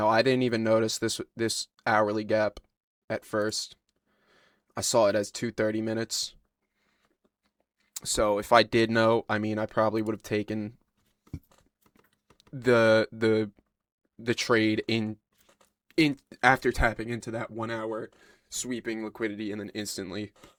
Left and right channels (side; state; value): both; identical; correlation 1.00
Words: I didn't even notice this hourly gap at first. I saw it as 2 30 minutes. So if I did know, I mean, I probably would have taken the the the trade in after tapping into that 1 hour sweeping liquidity and then